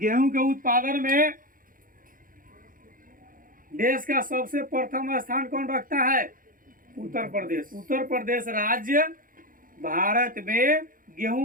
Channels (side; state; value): left; late; 0.40 ms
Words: के उत्पादन में। देश का सबसे प्रथम स्थान कौन रखता है? उत्तर प्रदेश। उत्तर प्रदेश राज्य भारत में